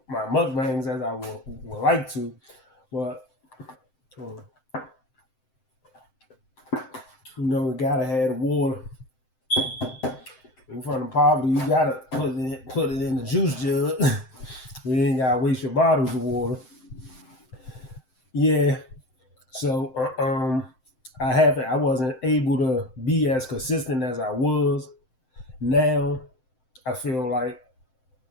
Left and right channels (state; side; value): late; right; 7.7 ms